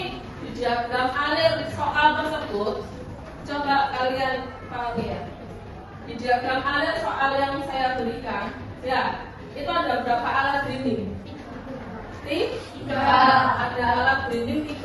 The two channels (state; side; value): identical; both; correlation 1.00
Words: di diagram alir soal tersebut coba kalian pahami ya. Di diagram alir soal yang saya berikan, ya itu ada berapa alat grinding? 3. Ada alat grinding